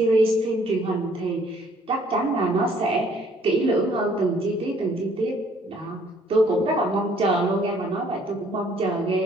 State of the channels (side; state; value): both; normal; correlation 0.61